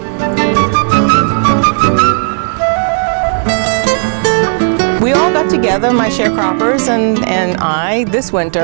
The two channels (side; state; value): left; silent; digital silence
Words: We all got together, my sharecroppers and I, this winter,